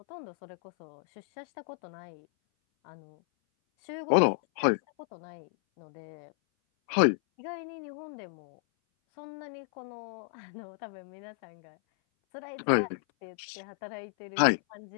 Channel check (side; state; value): right; silent; 56 dB below the other